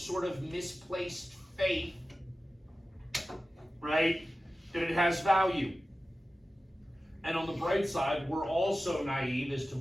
of misplaced faith, right, that it has value. And on the bright side, we're also naive as to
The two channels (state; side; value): normal; both; correlation 0.95